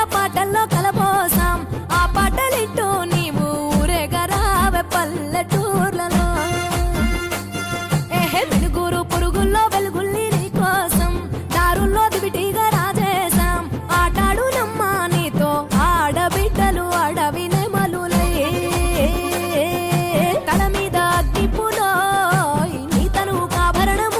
పాటల్లో కలపోసాం ఆ పాటలిట్టు నీవు ఊరేగరావే పల్లెటూర్లలో వెలుగురు పురుగుల్లో వెలుగుల్ని నీ కోసం దారుల్లో దివిటిగా రాజేశాం ఆటాడు నమ్మ నీతో ఆడబిడ్డలు అడవి నెమలులై తల మీద అగ్గిపులో నీ తను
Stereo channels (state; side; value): identical; both; correlation 1.00